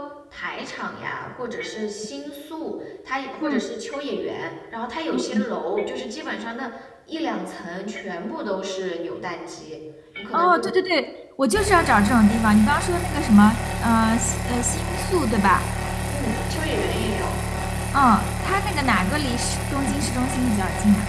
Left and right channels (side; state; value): both; identical; correlation 1.00